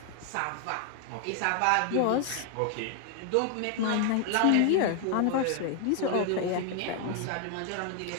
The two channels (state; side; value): different; both; correlation 0.00